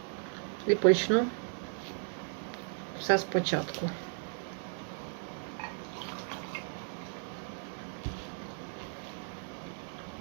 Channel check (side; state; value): left; silent; 54 dB below the other